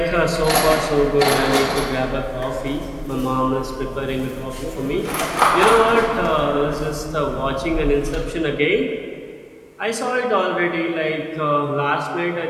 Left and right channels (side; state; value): both; identical; correlation 1.00